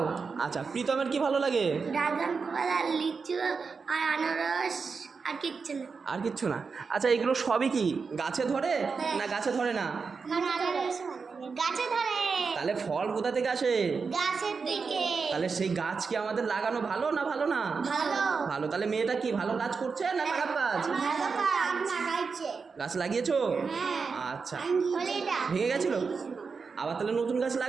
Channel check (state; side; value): quieter; left; 5.1 dB